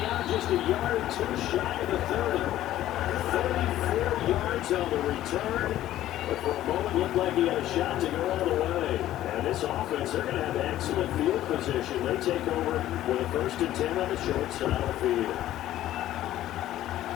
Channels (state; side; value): quieter; right; 13.5 dB